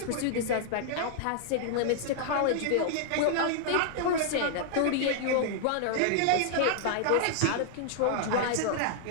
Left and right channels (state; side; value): different; both; correlation -0.01